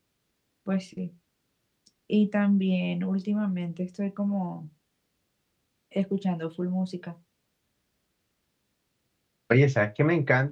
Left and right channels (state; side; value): identical; both; correlation 1.00